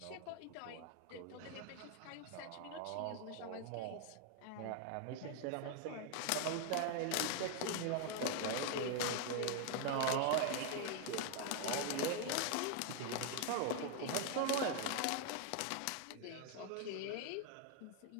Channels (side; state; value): both; different; correlation 0.00